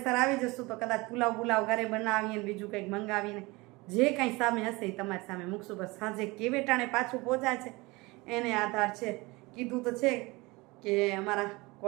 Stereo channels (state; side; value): quieter; left; 23.6 dB